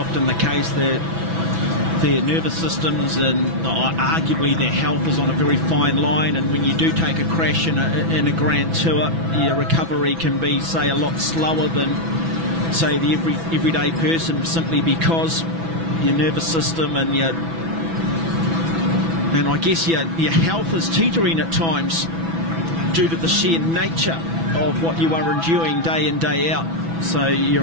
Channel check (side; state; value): left; late; 6.1 ms